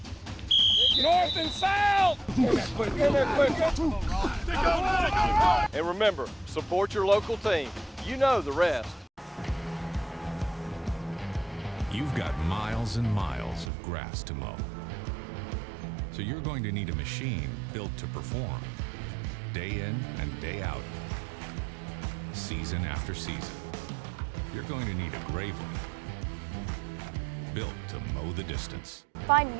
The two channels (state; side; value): drops out; left; at 13.7 s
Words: North and south! And remember, support your local team. You know the rest. You've got miles and miles of grass to mow. So you're going to need a machine built to perform, day in and day out, season after season. You're going to need a Gravely, built to mow the distance. Find